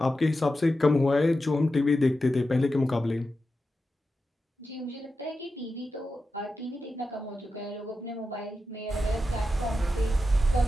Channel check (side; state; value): both; normal; correlation 0.90